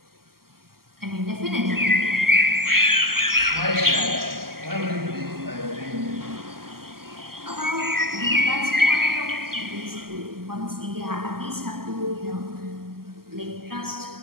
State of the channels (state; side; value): late; left; 0.93 ms